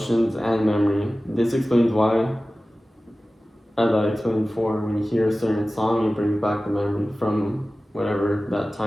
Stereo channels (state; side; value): normal; both; correlation 0.96